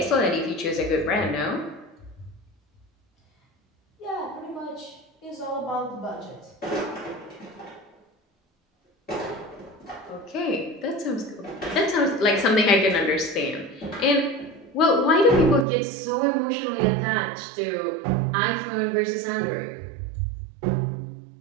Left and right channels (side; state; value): left; drops out; at 15.7 s